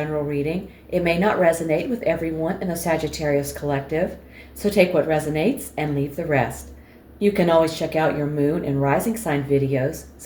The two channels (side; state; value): both; identical; correlation 1.00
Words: reading, it may not resonate with everyone in the Sagittarius collective, so take what resonates and leave the rest. You can always check out your Moon and Rising sign videos.